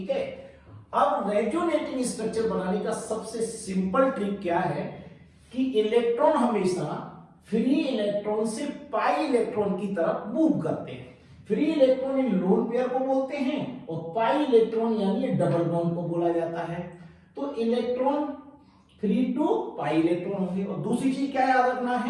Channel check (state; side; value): identical; both; correlation 1.00